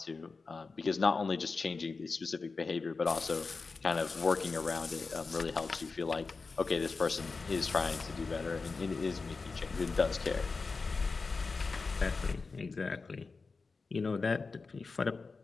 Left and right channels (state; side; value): quieter; right; 4.3 dB